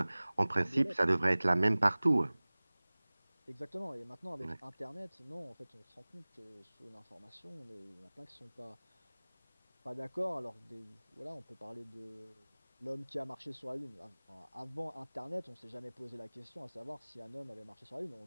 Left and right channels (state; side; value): inverted; both; correlation -1.00